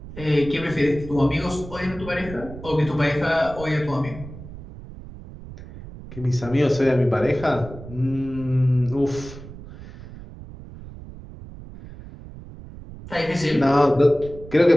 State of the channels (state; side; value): noise; right; rumble, 15 dB below the sound